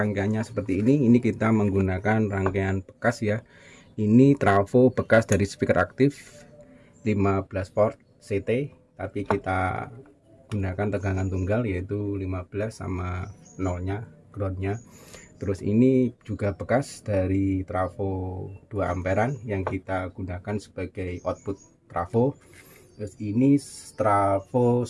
seperti ini kita menggunakan rangkaian bekas ya. Ini trafo bekas dari speaker aktif 15 volt CT, tapi kita gunakan tegangan tunggal yaitu 15 sama nolnya groundnya. Terus ini juga bekas dari trafo 2 amperan yang kita gunakan sebagai output trafo. Terus ini trafo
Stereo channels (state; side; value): identical; both; correlation 1.00